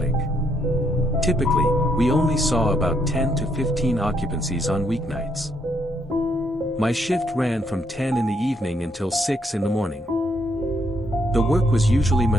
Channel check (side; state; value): both; normal; correlation 0.73